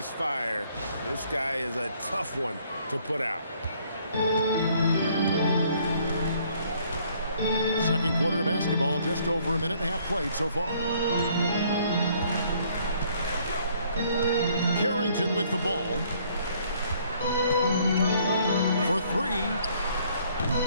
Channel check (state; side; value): inverted; both; correlation -0.63